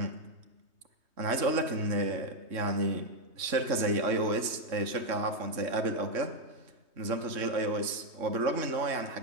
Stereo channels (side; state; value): left; late; 3.2 ms